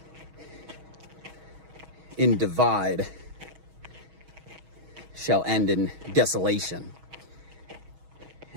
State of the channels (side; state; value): left; late; 6.3 ms